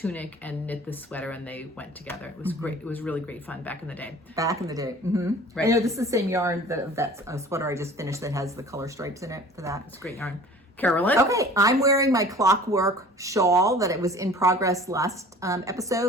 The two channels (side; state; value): both; normal; correlation 0.46